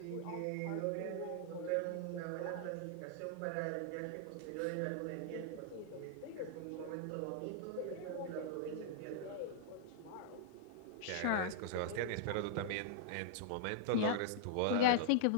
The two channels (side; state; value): both; different; correlation -0.01